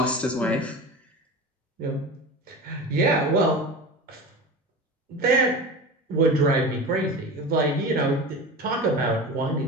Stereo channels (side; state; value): both; normal; correlation 0.30